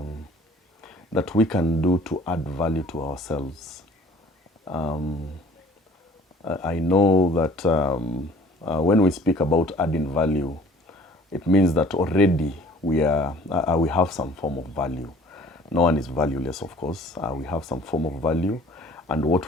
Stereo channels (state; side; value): normal; both; correlation 0.52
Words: that we can do to add value to ourselves? I know that when we speak about adding value, it means that already we have some form of value. No one is valueless, of course. We have some form of value, and what